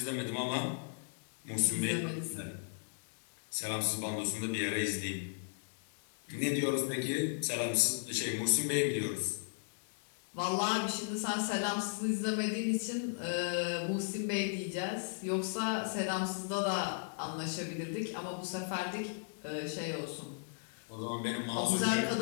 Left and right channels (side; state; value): right; silent; digital silence